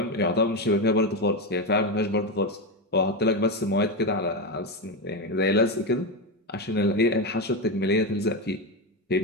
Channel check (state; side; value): normal; both; correlation 0.13